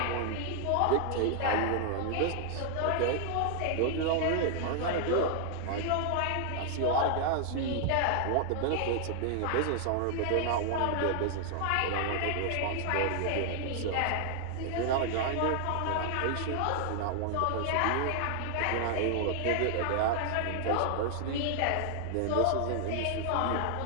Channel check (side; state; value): both; different; correlation 0.00